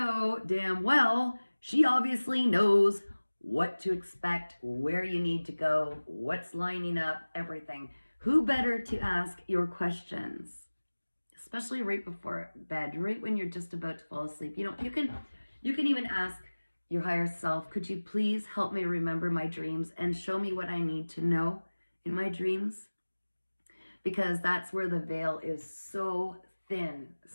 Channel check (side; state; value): both; inverted; correlation -1.00